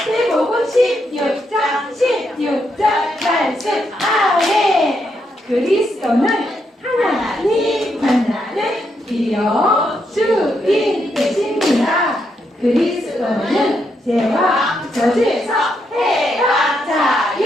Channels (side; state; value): both; normal; correlation 0.79